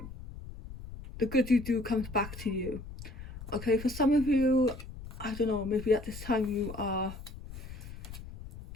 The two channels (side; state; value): left; noise; rumble, 12 dB below the sound